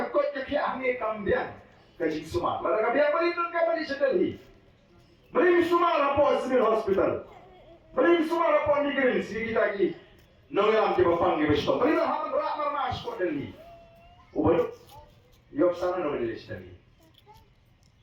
kehiak hame kambian. Kajing Sumar. Lalu biar berlindung ke balik sedalhi. Beri Sumar apa civil hospital. Beri Sumar apa negeri sini kita lagi. Nongam di bawah di besok. Beri haman ramar mas kau Delhi. Ubah. Yok sana nongam di sedalhi.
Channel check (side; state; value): both; identical; correlation 1.00